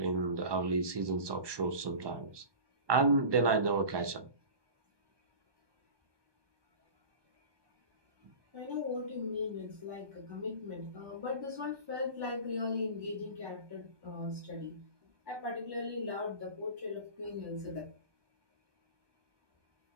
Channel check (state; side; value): late; left; 1.2 ms